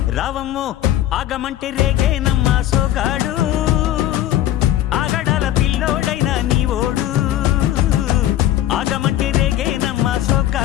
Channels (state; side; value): quieter; right; 13.0 dB